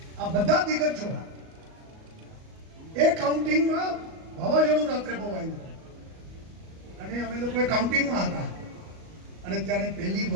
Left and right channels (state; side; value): late; left; 37 ms